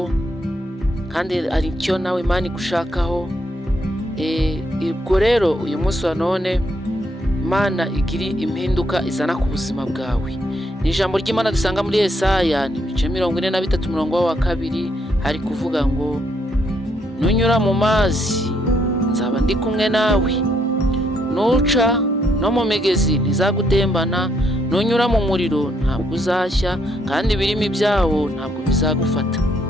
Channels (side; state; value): both; normal; correlation 0.73